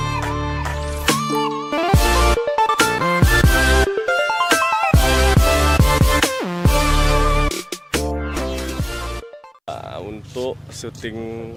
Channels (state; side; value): identical; both; correlation 1.00